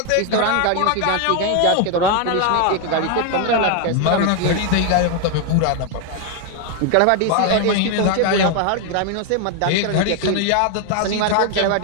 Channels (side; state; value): both; different; correlation 0.01